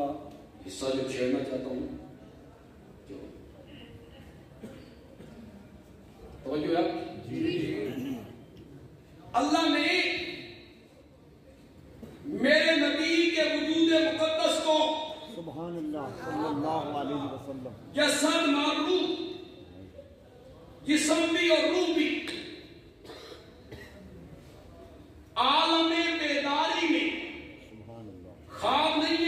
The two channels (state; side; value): identical; both; correlation 1.00